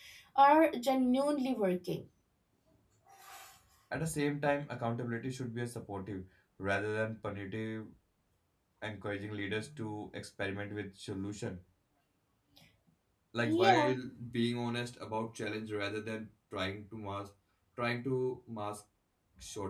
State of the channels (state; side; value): identical; both; correlation 1.00